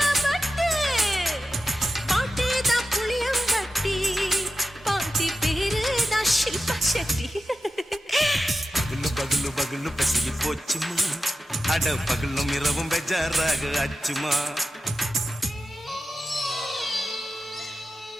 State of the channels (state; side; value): normal; both; correlation 0.92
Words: பட்டு பாட்டி தான் புளியம்பட்டி பாட்டி பேரு தான் ஷில்பா செட்டி பகலு பகலு பகலு பசிக்கு போச்சுமா அட பகலும் இரவும் பெஜாராக ஆச்சுமா